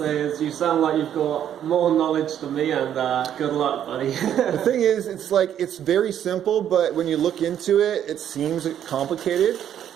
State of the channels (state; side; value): quieter; left; 10.0 dB